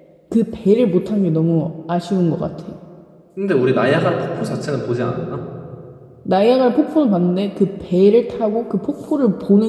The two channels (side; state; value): both; identical; correlation 1.00